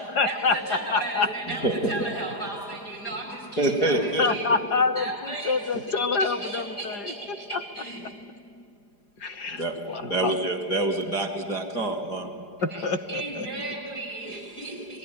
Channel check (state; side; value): late; right; 4.9 ms